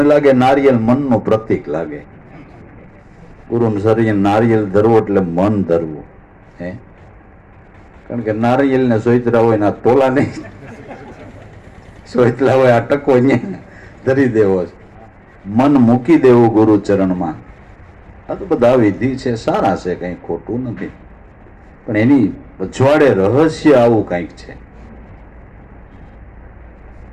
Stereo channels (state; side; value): identical; both; correlation 1.00